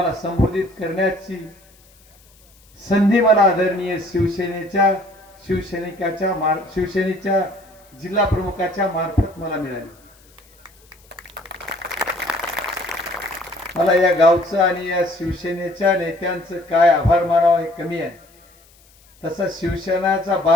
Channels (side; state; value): left; noise; hiss, 29 dB below the sound